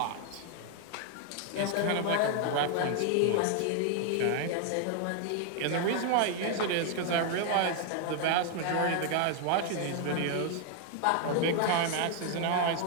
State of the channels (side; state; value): both; different; correlation 0.00